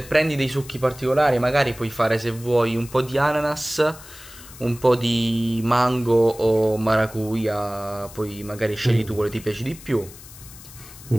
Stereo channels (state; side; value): noise; left; hiss, 18 dB below the sound